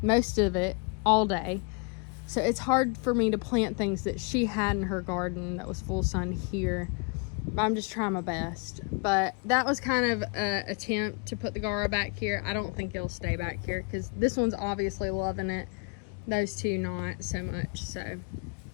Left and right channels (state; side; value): quieter; right; 33.2 dB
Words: most of it all day. So it's hard for me to plant things that she had in her garden that was full sun here. I'm just trying my best. But that was kind of an attempt to put the Gara back here. I don't think it'll stay back here, because this one's obviously loving it. Those two not so much. So